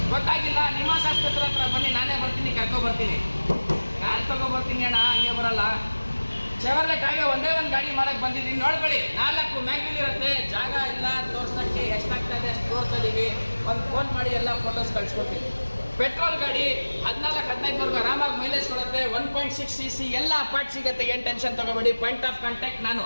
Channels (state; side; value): inverted; both; correlation -1.00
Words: ಗೊತ್ತಾಗಿಲ್ಲ? ನಿಮಾನ್ಸ್ ಆಸ್ಪತ್ರೆ ಹತ್ರ ಬನ್ನಿ, ನಾನೇ ಬರ್ತೀನಿ, ಕರ್ಕೊಬರ್ತೀನಿ. ಕಾರ್ ತಗೊಬರ್ತೀನಿ ಅಣ್ಣ, ಹಂಗೆ ಬರಲ್ಲ. ಚೆವರ್ಲೆಟ್ ಆಗಿ ಒಂದೇ ಒಂದು ಗಾಡಿ ಮಾಡಕ್ಕೆ ಬಂದಿದ್ದೀನಿ, ನೋಡ್ಕೊಳ್ಳಿ. 4 ಮ್ಯಾಗ್ವಿಲ್ ಇರುತ್ತೆ, ಜಾಗ ಇಲ್ಲ ತೋರ್ಸೋಕ್ಕೆ. ಎಷ್ಟಾಗ್ತಾ ಇದೆ ಅಷ್ಟು ತೋರಿಸ್ತಾ ಇದ್ದೀವಿ. ಒಂದು ಫೋನ್ ಮಾಡಿ ಎಲ್ಲ ಫೋಟೋಸ್ ಕಳಿಸ್ಕೊಡ್ತೀವಿ. ಪೆಟ್ರೋಲ್ ಗಾಡಿ 14-15ವರೆಗೂ ಆರಾಮಾಗಿ ಮೈಲೇಜ್ ಕೊಡುತ್ತೆ. 1.6 cc ಎಲ್ಲ ಪಾರ್ಟ್ ಸಿಗುತ್ತೆ, ಏನು ಟೆನ್ಷನ್ ತಗೋಬೇಡಿ. ಪಾಯಿಂಟ್ ಆಫ್ ಕಾಂಟ್ಯಾಕ್ಟ್ ನಾನು.